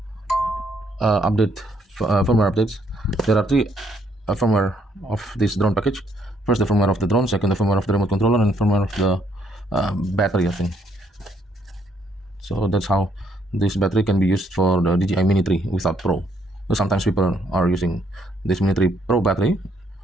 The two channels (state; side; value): normal; both; correlation 0.69